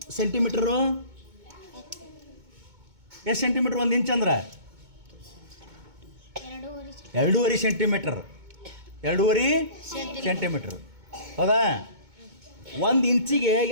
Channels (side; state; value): left; late; 2.2 ms